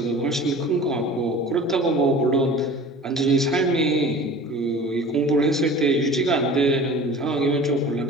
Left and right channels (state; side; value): normal; both; correlation 0.41